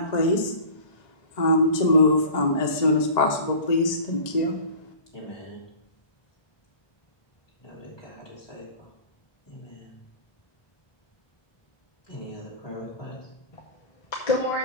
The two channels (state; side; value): late; right; 1.9 ms